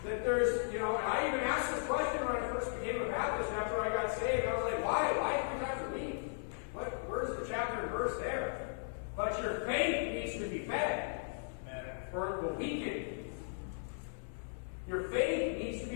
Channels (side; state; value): right; silent; 53 dB below the other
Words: that there's, and I even asked this question when I first became a Baptist after I got saved. I was like, why? Why 3 times a week? Where's the chapter and verse there? But your faith needs to be fed, or it will weaken. Your faith needs to